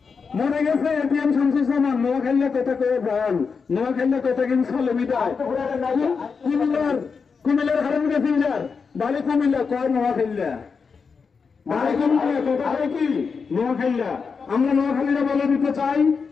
মনে গেছে এটিএম শামসুজ্জামান নোয়াখালী কথা কয়ে প্রাণ, নোয়াখালী কথা কিন্তু চলে মিটায়। কুমিল্লার হারান প্যাসেঞ্জার বাড়ি কুমিল্লা কয় নোয়াখালী, বাড়ি কুমিল্লা কথা কয় কি নোয়াখালী। আমরা নোয়াখালীরা বলে দিতে চাই,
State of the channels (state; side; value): quieter; right; 5.4 dB